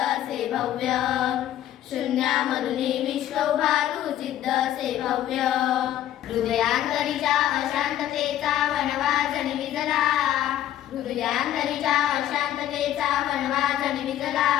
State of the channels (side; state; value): right; quieter; 12.1 dB